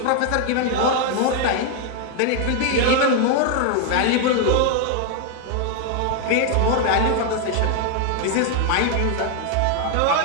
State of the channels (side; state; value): both; different; correlation 0.00